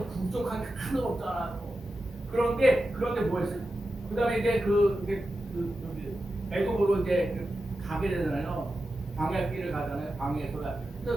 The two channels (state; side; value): normal; both; correlation 0.91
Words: 부족한 게 하나도 없잖아요. 그런데 뭐 했어요? 그다음에 이제 애굽으로 이제 가게 되잖아요. 광야길을 가잖아요. 광야에서